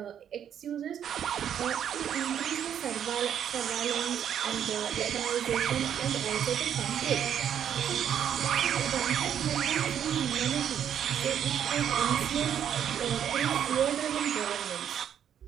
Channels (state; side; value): quieter; left; 9.2 dB